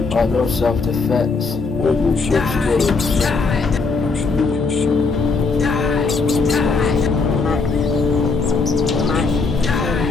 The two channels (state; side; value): quieter; right; 4.3 dB